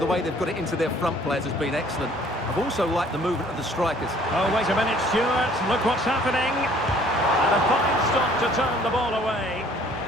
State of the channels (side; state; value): both; normal; correlation 0.56